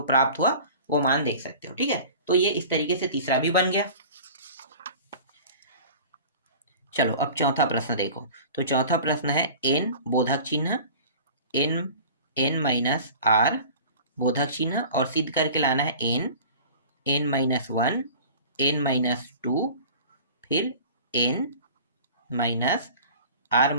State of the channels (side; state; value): both; inverted; correlation -0.41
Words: प्राप्त हुआ वो मान देख सकते हो। ठीक है, तो ये इस तरीके से तीसरा भी बन गया। चलो अब चौथा प्रश्न देखो। तो चौथा प्रश्न है n बोधक चिन्ह n माइनस r बोधक चिन्ह, और सिद्ध करके लाना है n माइनस 1 n माइनस 2 फिर n माइनस r